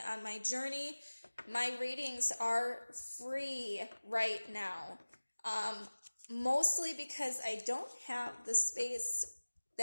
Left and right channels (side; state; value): both; inverted; correlation -1.00